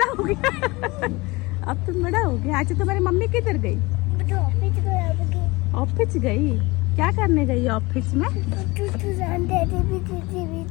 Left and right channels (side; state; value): right; quieter; 23.2 dB